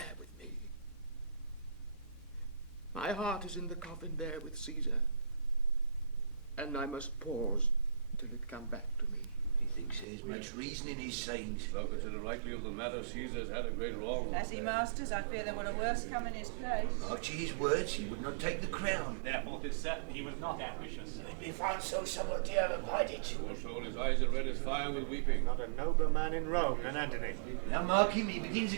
with me. My heart is in the coffin there with Caesar, and I must pause till it come back to me. He thinks there's much reason in his sayings. Thou consider rightly of the matter, Caesar's had a great wrong. As he masters, I fear there will a worse come in his place. After his words, he would not take the crown. Therefore, 'tis certain he was not ambitious. If he found so, someone dare abide it. Poor soul, his eyes are red as fire with weeping. Not a nobler man in Rome than Antony. Now mark him, he begins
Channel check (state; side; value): drops out; left; at 10.1 s